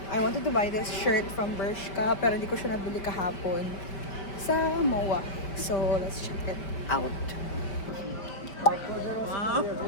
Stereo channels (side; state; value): right; late; 5.1 ms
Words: I wanted to buy this shirt from Bershka pero hindi ko siya nabili kahapon sa MOA. So let's check it out. Wow!